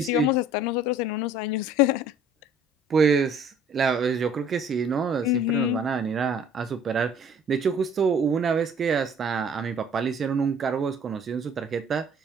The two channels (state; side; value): normal; both; correlation 0.53